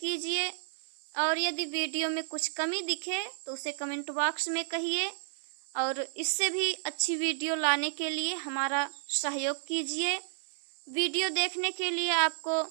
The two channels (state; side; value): silent; left; 57 dB below the other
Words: और यदि वीडियो में कुछ कमी दिखे तो उसे कमेंट बॉक्स में कहिए, और इससे भी अच्छी वीडियो लाने के लिए हमारा सहयोग कीजिए। वीडियो देखने के लिए आपको